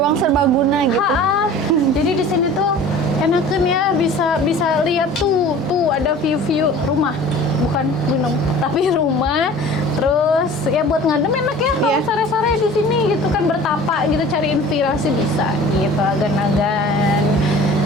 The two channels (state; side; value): normal; both; correlation 0.44